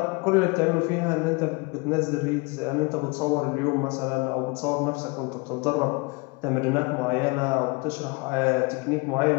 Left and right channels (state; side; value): quieter; right; 28.7 dB